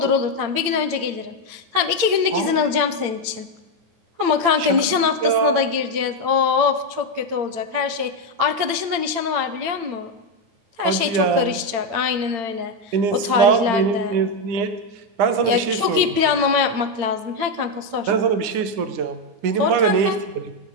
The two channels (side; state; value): left; late; 8.8 ms